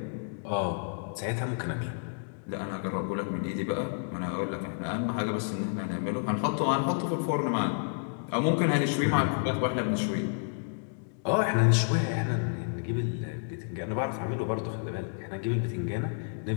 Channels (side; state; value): right; silent; digital silence